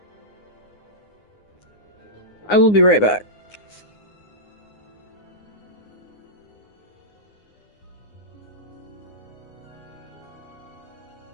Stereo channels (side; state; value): right; late; 9.7 ms